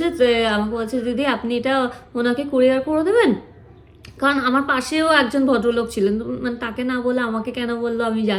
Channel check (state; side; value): identical; both; correlation 1.00